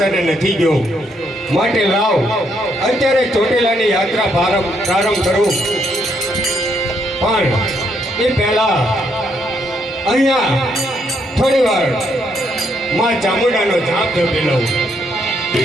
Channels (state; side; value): normal; both; correlation 0.74